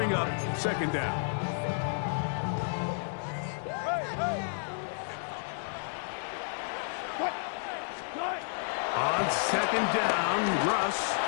up 2nd down. On 2nd down, Russ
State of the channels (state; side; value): silent; right; digital silence